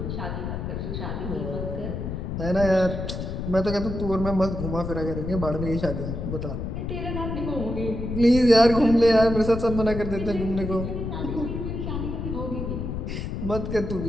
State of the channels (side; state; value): left; noise; rumble, 4 dB below the sound